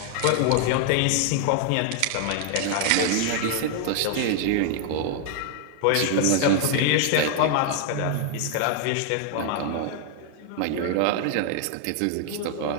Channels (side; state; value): both; different; correlation 0.00